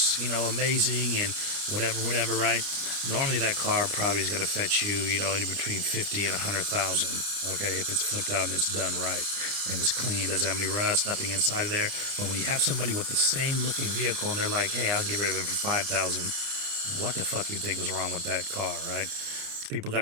and whatever, right? Normally that car probably is going to fetch you, anywhere between 50 and 100,000, okay? If it's flipped out and it's done right and it's clean, doesn't have any rust, nothing inside of there. But when you have somebody with the same looking vehicle and they're like, hey, I'll get rid of it for 5,000, what the fuck you think is wrong with that car, right? People got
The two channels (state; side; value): late; left; 29 ms